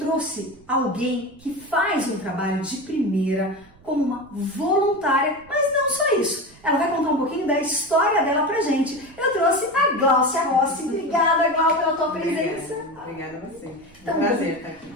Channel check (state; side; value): noise; right; rumble, 27 dB below the sound